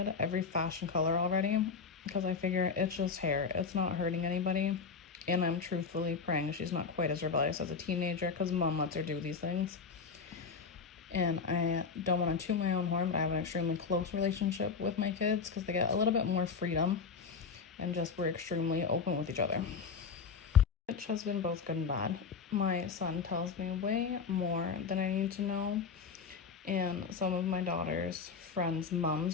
every fashion color already, because I figure it's just hair. It's not hurting anybody. And I'm truthfully praying she's not quite as rebellious as a teenager, because mom lets her do these things. And I don't want to toot my own horn, but I have an extremely close relationship with my kids because they get a little bit more freedom and just we're extremely open with each other. Which has been both good and bad. My son tells me way more than I need to know, and some of my daughter's friends'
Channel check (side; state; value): right; quieter; 5.5 dB